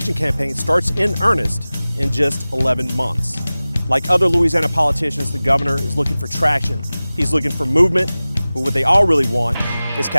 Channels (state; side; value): inverted; both; correlation -0.98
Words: campaign starts in earnest in just 11 months. Like other Louisiana politicians, the governor is looking for traction. He's looking for movement, but what they all really want is